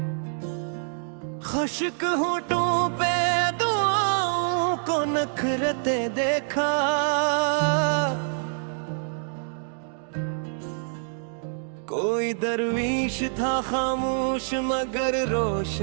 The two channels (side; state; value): left; silent; 61 dB below the other